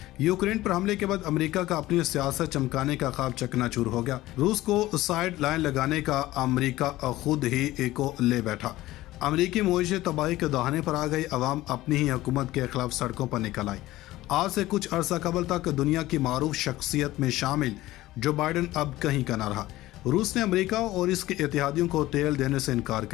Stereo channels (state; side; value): quieter; right; 16.8 dB